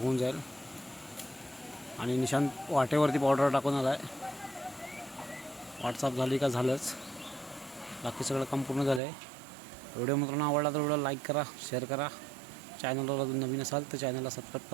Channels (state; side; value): drops out; left; at 9.0 s